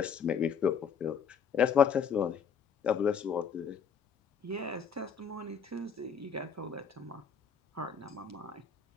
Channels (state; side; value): quieter; right; 6.7 dB